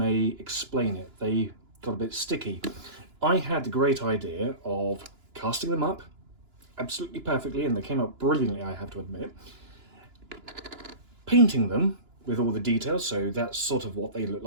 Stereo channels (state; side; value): late; left; 2.9 ms